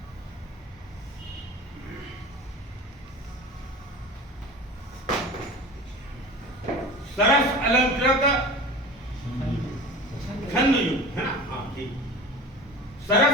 सरस अलंकृत छंद युक्त है ना, हाँ ठीक।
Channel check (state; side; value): normal; both; correlation 0.36